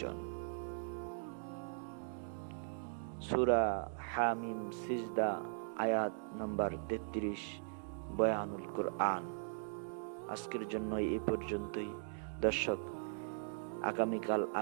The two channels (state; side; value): silent; left; digital silence